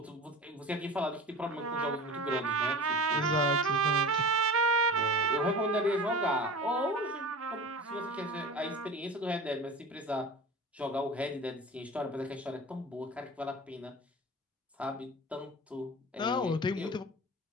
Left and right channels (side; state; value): both; normal; correlation 0.34